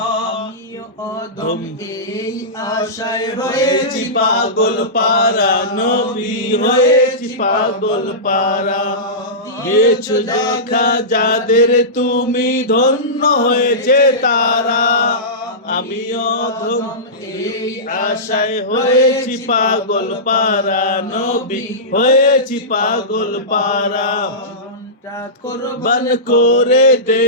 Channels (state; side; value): normal; both; correlation -0.17